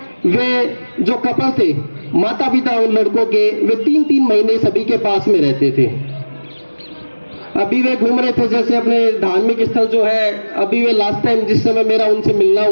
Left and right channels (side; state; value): both; inverted; correlation -1.00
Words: वे जो कपल थे, माता पिता उन लड़कों के, वे 3-3 महीने सभी के पास में रहते थे। अभी वे घूम रहे थे जैसे अपने धार्मिक स्थल जो है, अभी वे लास्ट टाइम जिस समय मेरा उनसे मिलना